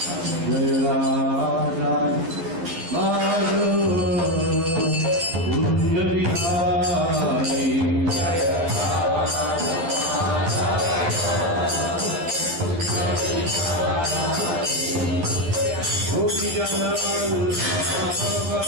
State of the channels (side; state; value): left; late; 12 ms